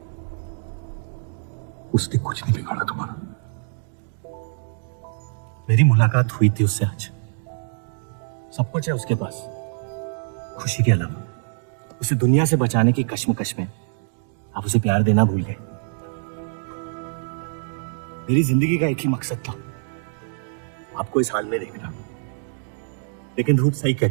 उसने कुछ नहीं बिगाड़ा तुम्हारा। मेरी मुलाकात हुई थी उससे आज। सब कुछ है उसके पास, खुशी के अलावा। उसे दुनिया से बचाने की कश्मकश में आप उसे प्यार देना भूल गए। मेरी जिंदगी का एक ही मकसद था, आपको इस हाल में देखना। लेकिन रूप सही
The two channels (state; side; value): silent; left; digital silence